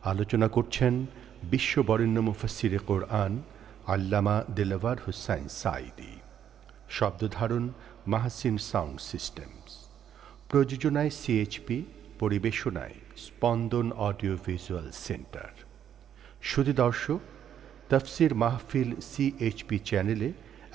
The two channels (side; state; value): left; quieter; 9.5 dB